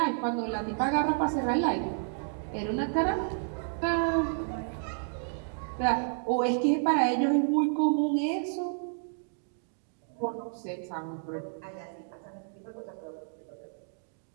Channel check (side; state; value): left; silent; digital silence